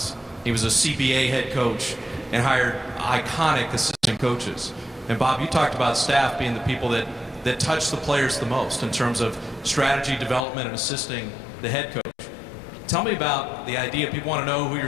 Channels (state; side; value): drops out; right; at 10.5 s